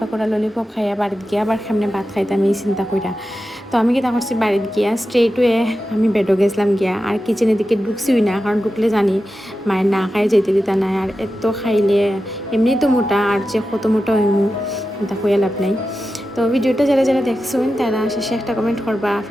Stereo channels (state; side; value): normal; both; correlation 0.92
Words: ললিপপ খাইয়া বাড়িতে গিয়ে আবার সামনে ভাত খাইতাম এই চিন্তা কইরা। তো আমি কি তা করছি, বাড়িতে গিয়া স্ট্রেট ওয়ে আমি বেডও গেছিলাম গিয়া, আর কিচেনের দিকে ঢুকছিই না, কারণ ঢুকলে জানি মায়ের না খাই যেতে দিতা নাই। আর এত খাইলে এমনি তো মোটা, আর যে কত মোটা হইমু তা কইয়া লাভ নাই। তো ভিডিওটা যারা যারা দেখছেন তারা শেষে একটা কমেন্ট করবা